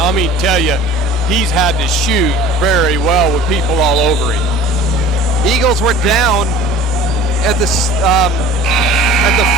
mean, tell you, he's had to shoot very well with people all over him. Eagles were down at the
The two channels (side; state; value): both; normal; correlation 0.44